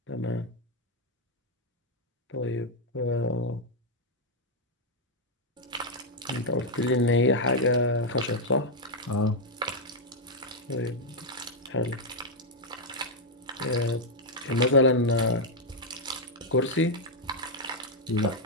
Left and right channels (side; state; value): both; normal; correlation -0.01